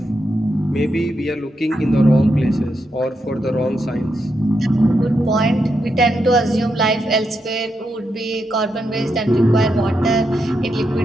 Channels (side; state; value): both; normal; correlation 0.83